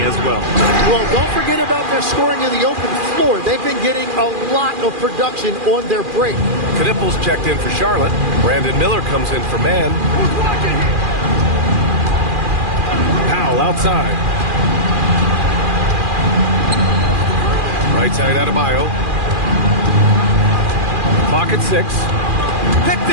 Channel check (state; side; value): late; left; 2.4 ms